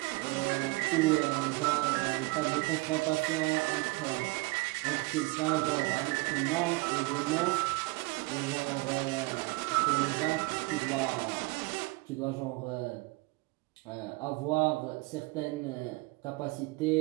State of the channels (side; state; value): left; quieter; 24.5 dB